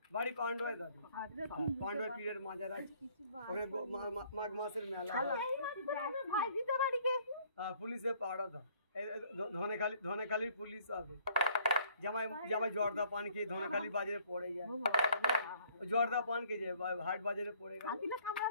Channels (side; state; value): both; inverted; correlation -0.61